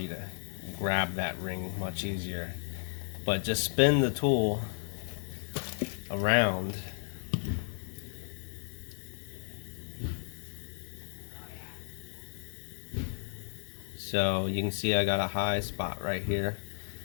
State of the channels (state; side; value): silent; right; 55 dB below the other